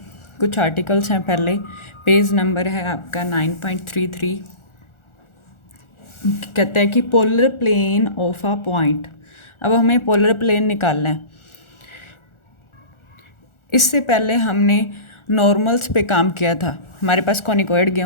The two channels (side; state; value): right; late; 1.4 ms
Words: कुछ आर्टिकल्स हैं। पहले पेज नंबर है आपका 9.33। कहता है कि polar plane of a point. अब हमें पोलर प्लेन निकालना है। इससे पहले हमने नॉर्मल्स पे काम किया था। हमारे पास कॉनिकॉइड